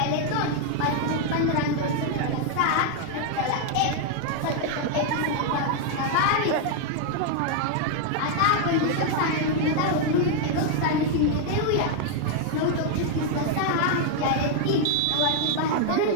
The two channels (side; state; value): both; different; correlation 0.00